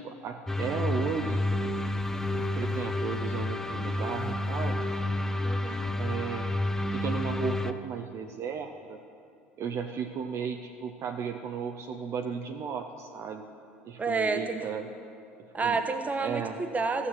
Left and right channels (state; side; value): normal; both; correlation 0.73